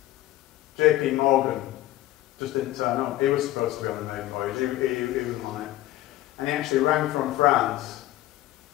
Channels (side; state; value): right; quieter; 15.4 dB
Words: J.P. Morgan just didn't turn up. He was supposed to be on the main voyage. He wasn't on it. And he actually rang from France